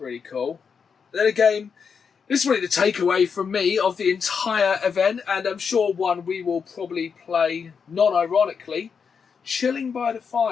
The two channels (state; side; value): quieter; right; 6.1 dB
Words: cool. Then again, this is really the takeaway from me of the entire event, and I'm sure one we will probably play non-ironically. Chilling by the